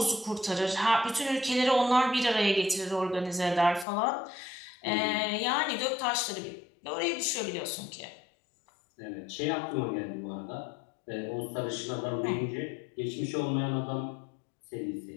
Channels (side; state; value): right; drops out; at 3.9 s